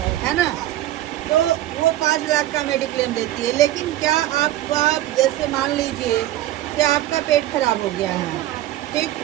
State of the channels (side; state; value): left; quieter; 14.3 dB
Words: है ना। तो वो 5 लाख का मेडिक्लेम देती है। लेकिन क्या आप जैसे मान लीजिए कि आपका पेट खराब हो गया है, ठीक,